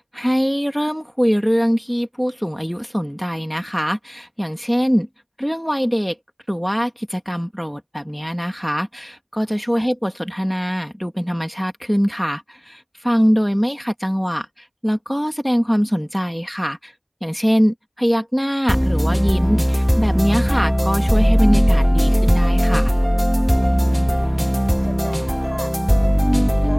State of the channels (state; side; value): identical; both; correlation 1.00